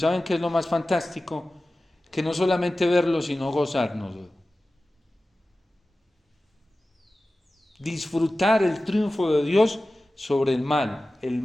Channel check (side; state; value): both; normal; correlation 0.96